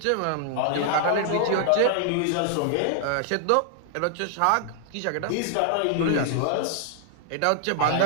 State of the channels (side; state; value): both; different; correlation 0.00